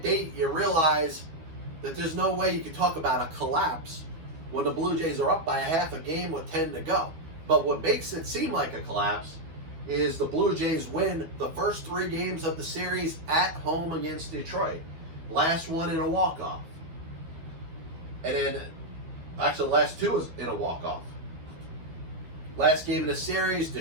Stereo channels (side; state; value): left; late; 13 ms